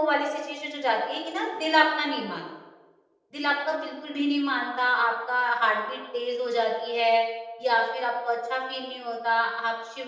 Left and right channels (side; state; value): both; identical; correlation 1.00